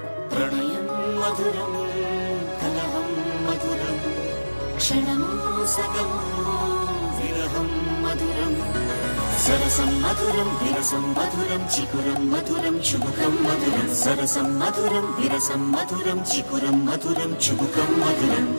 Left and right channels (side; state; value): both; inverted; correlation -1.00